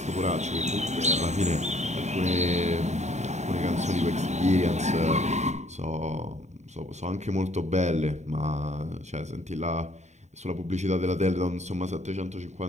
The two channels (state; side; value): late; left; 0.33 ms